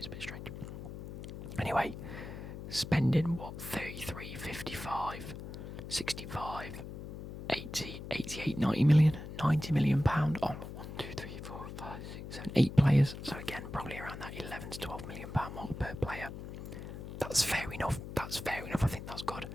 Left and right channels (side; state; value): left; noise; hum, 10 dB below the sound